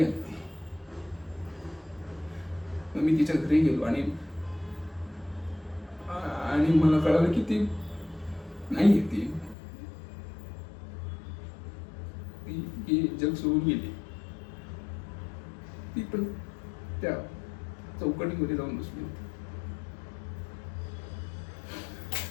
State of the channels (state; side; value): drops out; right; at 9.6 s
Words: आली ती. मग मी तिच्या घरी गेलो आणि मला कळालं की ती नाही ती जग सोडून गेली. ती पण त्या चौकटीमध्ये जाऊन बसली होती.